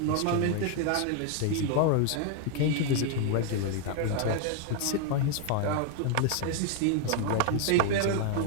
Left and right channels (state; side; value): different; both; correlation 0.00